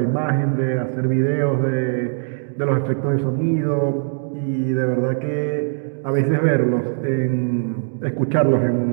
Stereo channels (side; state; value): left; silent; digital silence